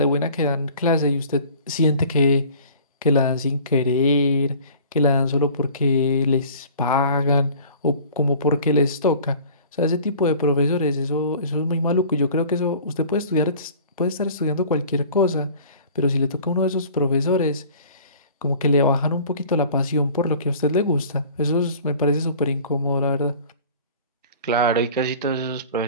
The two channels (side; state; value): both; inverted; correlation -0.46